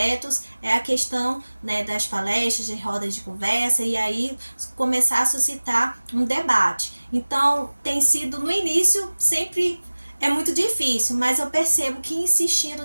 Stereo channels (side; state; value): both; inverted; correlation -1.00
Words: é a questão, né, das palestras, de rodas de conversa, e aí começar a suscitar um debate. Então, tem sido no início sempre muito difícil, mas eu percebo que